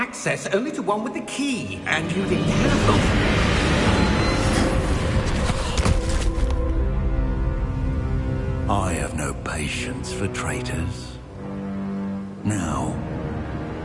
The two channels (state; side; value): identical; both; correlation 1.00